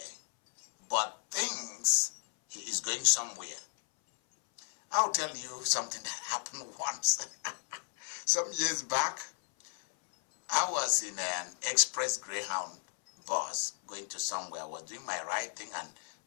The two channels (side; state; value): right; silent; 55 dB below the other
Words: but thinks he is going somewhere. I'll tell you something that happened once. Some years back, I was in an express Greyhound bus going to somewhere. I was doing my writing and